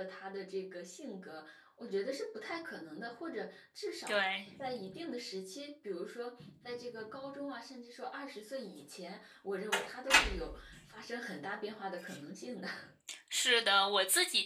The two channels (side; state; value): both; identical; correlation 1.00